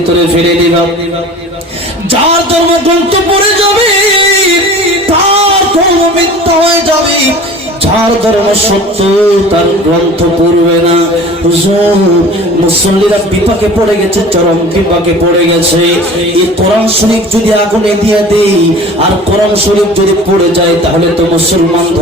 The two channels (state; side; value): normal; both; correlation 0.42